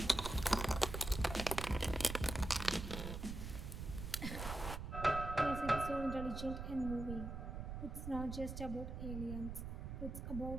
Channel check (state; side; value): noise; right; rumble, 6 dB below the sound